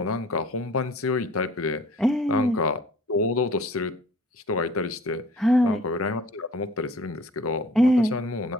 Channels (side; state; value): both; normal; correlation 0.51